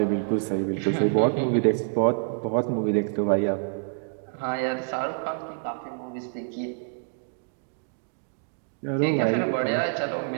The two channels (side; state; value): left; silent; digital silence